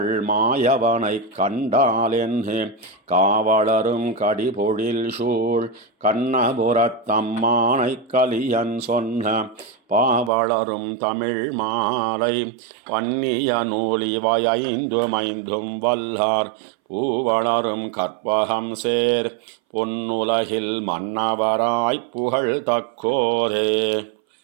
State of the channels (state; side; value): drops out; left; at 10.3 s